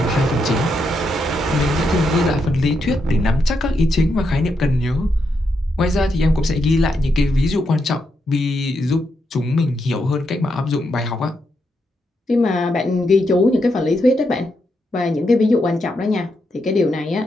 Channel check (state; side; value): normal; both; correlation 0.82